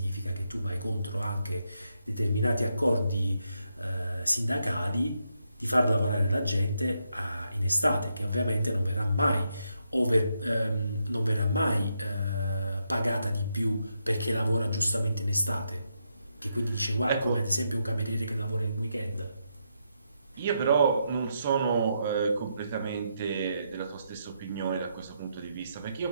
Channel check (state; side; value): inverted; both; correlation -0.81